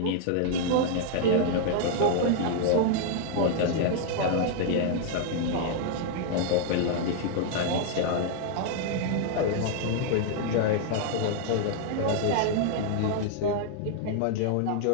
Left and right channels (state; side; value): different; both; correlation 0.00